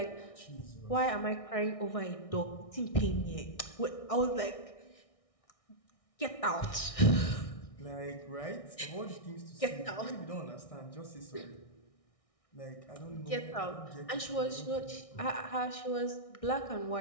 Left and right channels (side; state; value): right; late; 1.6 ms